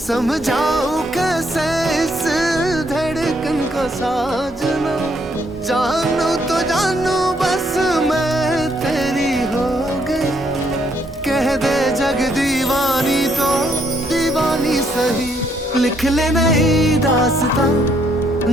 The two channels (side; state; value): both; normal; correlation 0.71